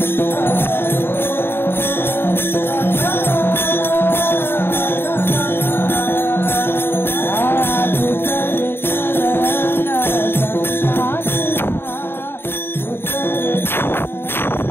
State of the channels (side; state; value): right; late; 0.11 ms